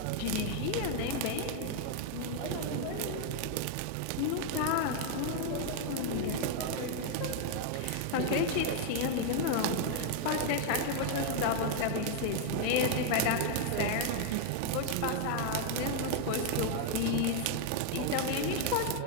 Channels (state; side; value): different; both; correlation 0.00